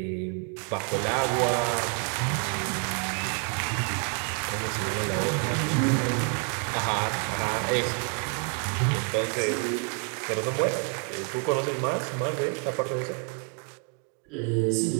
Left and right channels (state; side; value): quieter; left; 39.6 dB